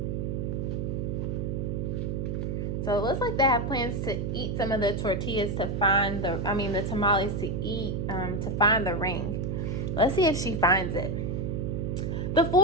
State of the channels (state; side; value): noise; right; hum, 2 dB below the sound